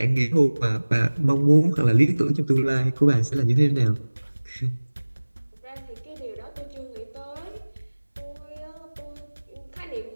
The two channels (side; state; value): both; inverted; correlation -1.00